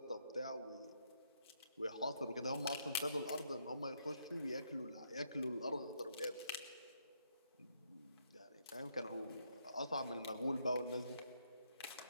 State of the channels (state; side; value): inverted; both; correlation -0.74